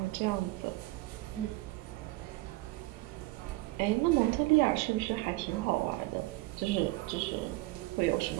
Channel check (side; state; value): left; quieter; 20.0 dB